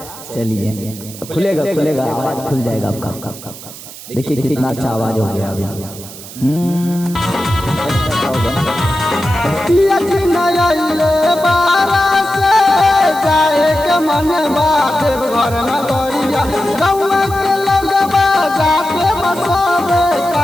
चलिए खुलेगा आवाज खुल जाएगा आपका। देखिए कितना अच्छा आवाज हो गया अभी।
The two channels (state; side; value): noise; right; hiss, 15 dB below the sound